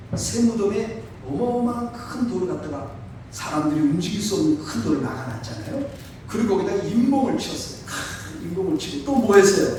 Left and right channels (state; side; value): identical; both; correlation 1.00